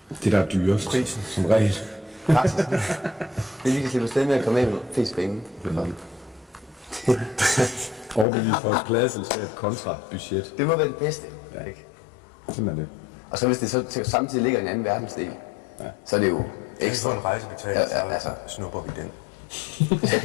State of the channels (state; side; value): drops out; right; at 8.2 s